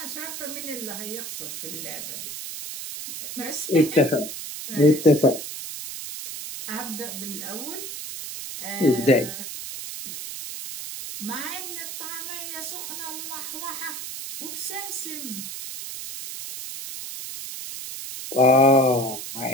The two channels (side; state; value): right; noise; hiss, 8 dB below the sound